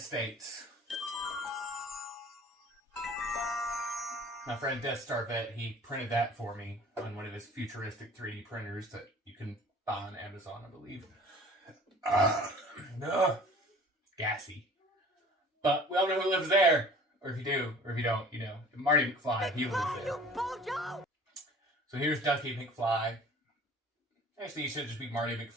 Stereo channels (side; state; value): both; normal; correlation 0.48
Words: My friend Death Star Vet, he printed that for me on one of his futuristic 3D printers that you can buy on Amazon, I believe. Gassy. But we all know who lives there. Or if you do, or if you don't, you know. Marty McFly, he lives there. So here's Ducky McFly. Actually, he should just be Marty